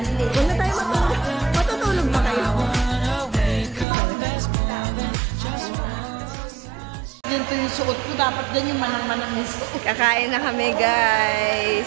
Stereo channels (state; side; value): drops out; left; at 3.9 s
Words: Huwag na tayo matulog. Matutulog pa kayo. Ganito yung suot ko. Dapat dyan yung manang-manang yung suot. Kakain na kami,